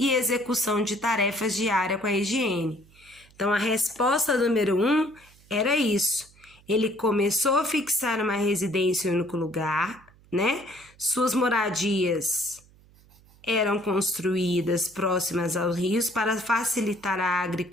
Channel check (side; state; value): right; noise; hum, 28 dB below the sound